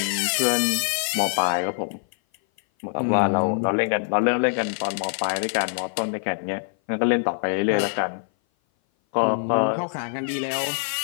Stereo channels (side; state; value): right; silent; 57 dB below the other